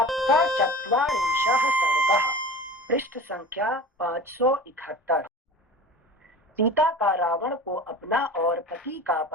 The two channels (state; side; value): normal; both; correlation 0.36